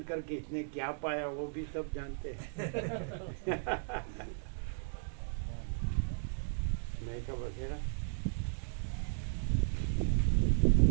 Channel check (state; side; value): silent; left; digital silence